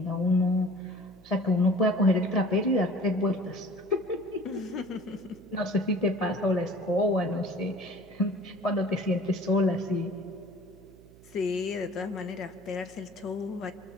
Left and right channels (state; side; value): noise; right; hum, 23 dB below the sound